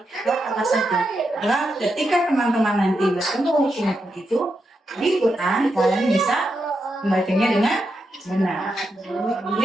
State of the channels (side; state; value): both; normal; correlation 0.85